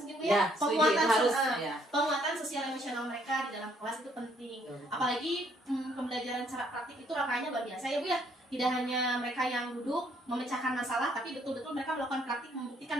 mungkin Bu ya. Penguatan sosial emosional mereka di dalam kelas itu penting. Apalagi pembelajaran secara praktik itu rangkaiannya luar biasa ya Bu ya. Tidak hanya mereka yang duduk memecahkan masalah, tapi betul-betul mereka melakukan praktik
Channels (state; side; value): normal; both; correlation 0.67